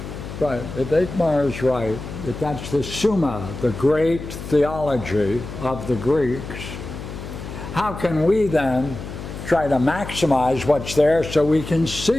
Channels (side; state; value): left; noise; hum, 10 dB below the sound